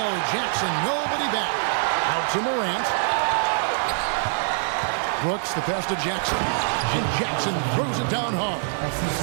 Jackson, nobody back. Out to Morant. Brooks, the pass to Jackson. And Jackson throws it down hard.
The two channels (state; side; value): silent; left; digital silence